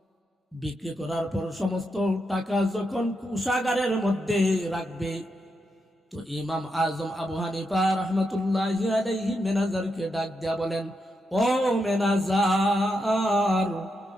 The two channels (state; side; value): normal; both; correlation 0.84